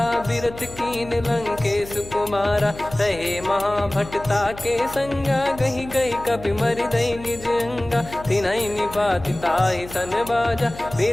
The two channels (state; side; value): noise; left; hum, 15 dB below the sound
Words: बिरत कीन लंकेश कुमारा। रहे महाभटता के संगा, गही गही कपि मरि दई निज अंगा। तिन्हि निपाति ताहि सन बाजा,